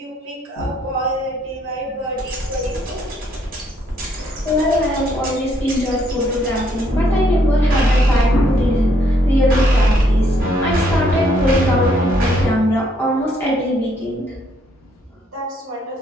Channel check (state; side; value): normal; both; correlation 0.69